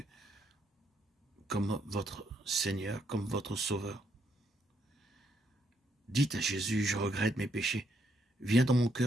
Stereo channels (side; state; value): both; normal; correlation 0.75